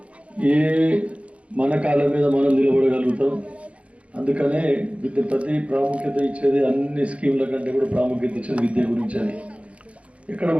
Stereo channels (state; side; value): late; left; 0.063 ms